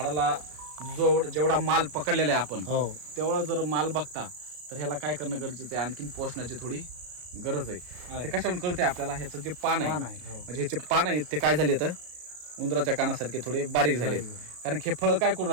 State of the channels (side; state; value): left; late; 33 ms